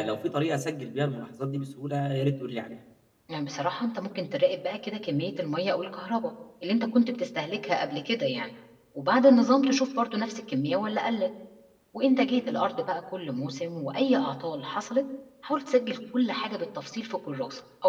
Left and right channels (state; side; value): identical; both; correlation 1.00